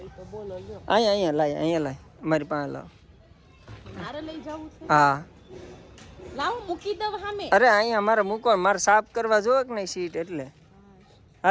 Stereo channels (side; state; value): both; identical; correlation 1.00